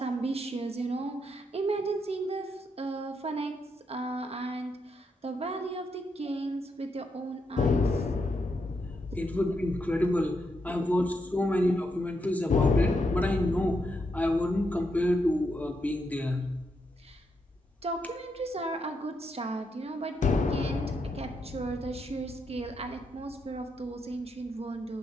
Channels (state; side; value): normal; both; correlation 0.81